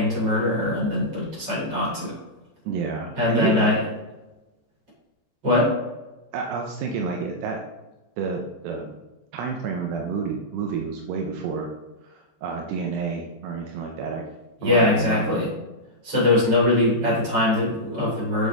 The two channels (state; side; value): late; left; 13 ms